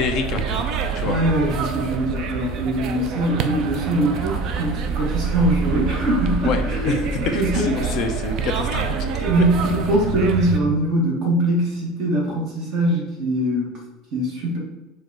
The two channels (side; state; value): both; normal; correlation 0.37